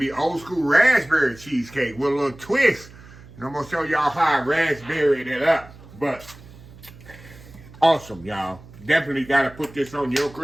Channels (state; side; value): noise; right; hum, 20 dB below the sound